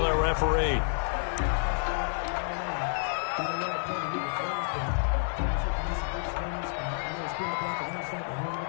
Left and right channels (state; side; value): silent; right; digital silence